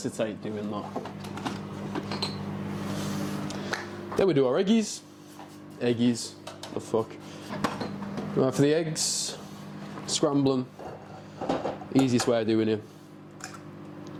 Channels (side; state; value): both; identical; correlation 1.00